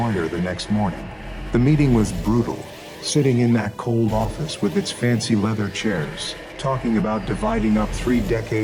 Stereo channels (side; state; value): both; identical; correlation 1.00